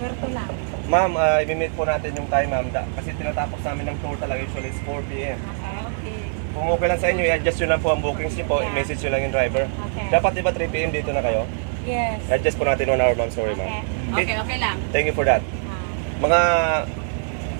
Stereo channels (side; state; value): left; silent; digital silence